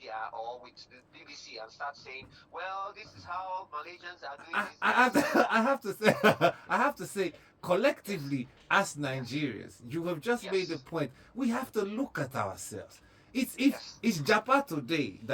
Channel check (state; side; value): identical; both; correlation 1.00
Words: or with the BBC and start saying, well, this is how Malaysians are doing this? I have to say, collectively, as Nigerians, you have just made a point. We have to look at ourselves. It's Japan today